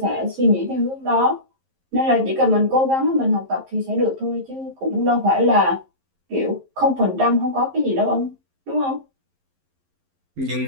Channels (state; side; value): late; left; 11 ms